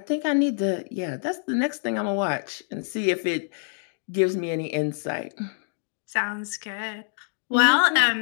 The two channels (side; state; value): right; silent; digital silence